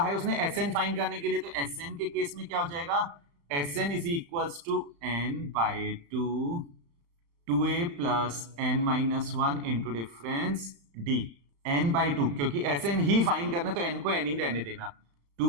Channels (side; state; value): left; late; 35 ms